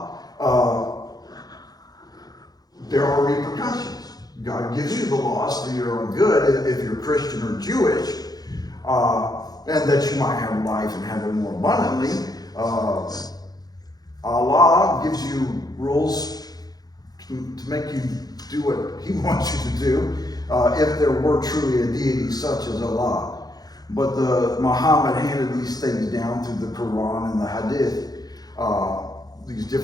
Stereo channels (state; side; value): late; right; 0.19 ms